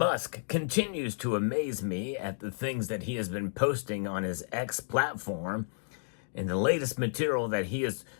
continues to amaze me at the things that he has been posting on his X platform. And the latest material that he has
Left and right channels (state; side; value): silent; right; digital silence